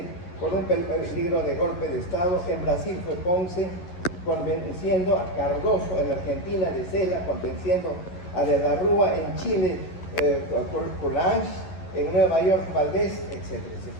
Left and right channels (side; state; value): right; late; 11 ms